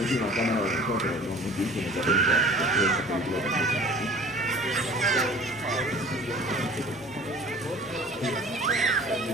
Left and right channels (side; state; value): both; normal; correlation 0.45